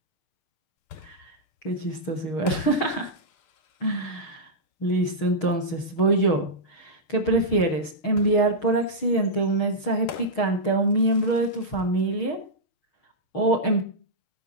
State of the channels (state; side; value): late; right; 6.4 ms